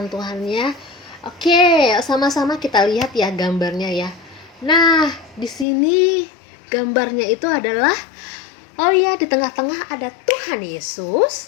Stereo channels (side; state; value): right; drops out; at 5.7 s